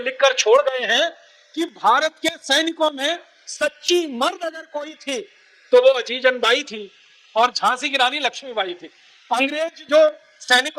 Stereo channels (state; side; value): identical; both; correlation 1.00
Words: छोड़ गए हैं कि भारत के सैनिकों में सच्ची मर्द अगर कोई थी तो वो अजीजन बाई थी और झांसी की रानी लक्ष्मीबाई थी। अंग्रेज जो